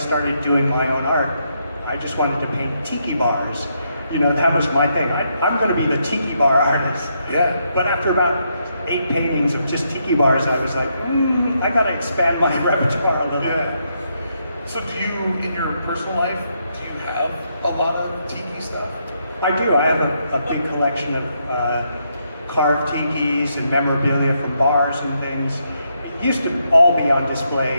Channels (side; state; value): both; inverted; correlation -0.78